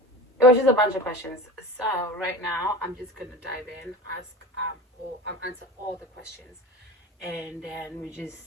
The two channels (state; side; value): normal; both; correlation 0.33